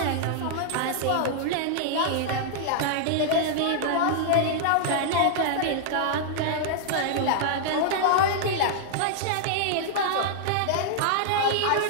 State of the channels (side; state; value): both; different; correlation -0.01